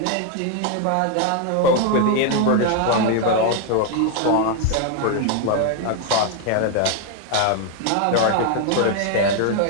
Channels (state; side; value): different; both; correlation 0.00